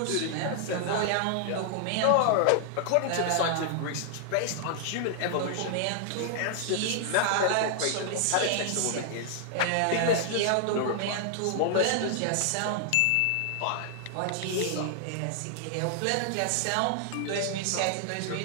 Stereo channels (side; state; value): both; different; correlation -0.01